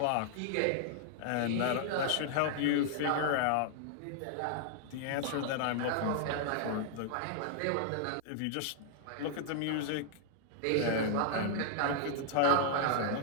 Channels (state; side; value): different; both; correlation -0.01